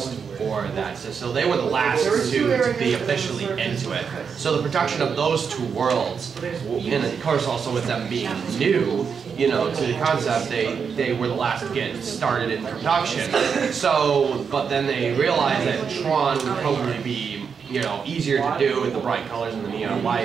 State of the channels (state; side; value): quieter; left; 6.3 dB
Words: for that. So they were the last two to be officially into it. So the production of those two worlds, and of course also with them being new, you know, to the concept, they were the last to get started in production. So, but then they realized that Tron would probably be, you know, easier to do with the bright colors and the neon